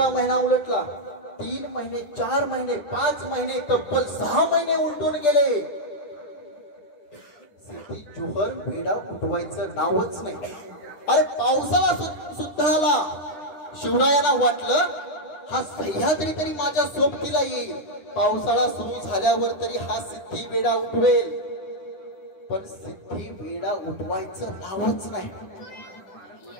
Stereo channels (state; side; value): late; right; 10 ms